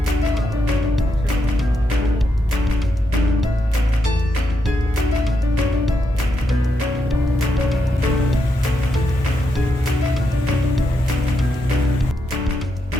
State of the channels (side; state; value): both; normal; correlation 0.82